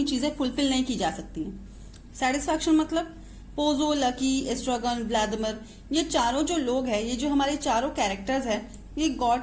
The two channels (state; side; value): identical; both; correlation 1.00